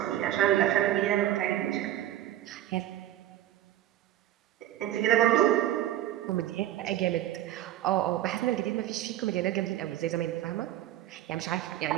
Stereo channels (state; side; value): quieter; left; 13.1 dB